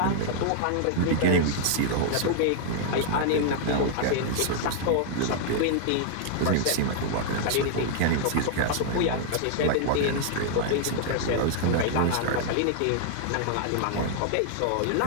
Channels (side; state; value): both; different; correlation -0.01